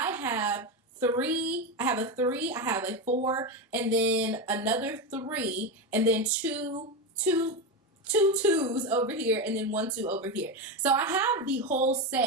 have a 3, I have a 4, and then another 3, and then two 2s over here, and then 1 2 over here. So I have the whole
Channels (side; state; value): both; normal; correlation 0.15